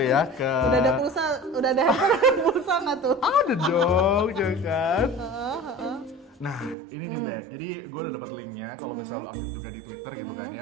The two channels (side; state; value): left; drops out; at 6.8 s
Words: ke. Udah ada handphone pulsa nggak tuh? Ada dong, ya kan? Nah, ini nih Bek, jadi gue udah dapat linknya kalau misalnya lo aktif juga di Twitter gitu kan